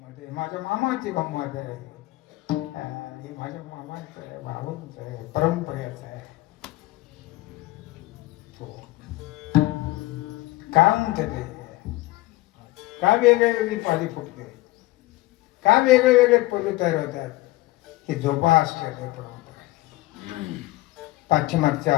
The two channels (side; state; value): right; quieter; 18.8 dB